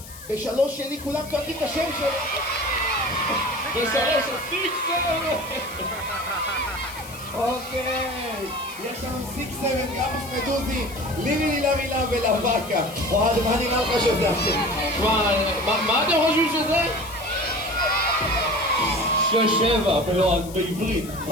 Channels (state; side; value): noise; left; hiss, 16 dB below the sound